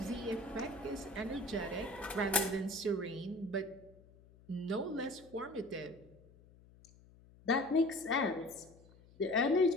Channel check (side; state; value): left; noise; hum, 24 dB below the sound